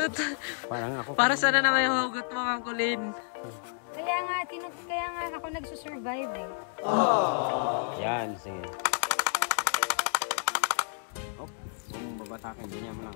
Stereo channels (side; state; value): right; silent; digital silence